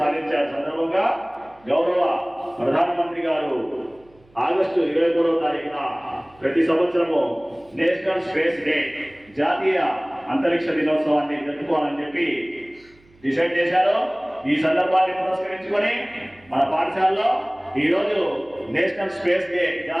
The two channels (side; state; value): right; noise; hum, 30 dB below the sound